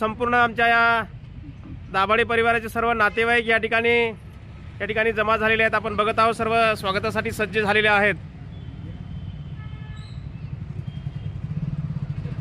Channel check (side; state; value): both; identical; correlation 1.00